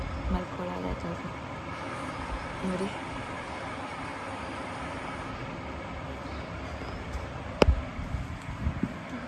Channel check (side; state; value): both; identical; correlation 1.00